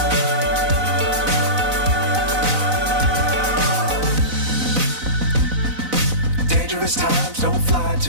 Dangerous times, don't fly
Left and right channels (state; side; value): late; left; 4.0 ms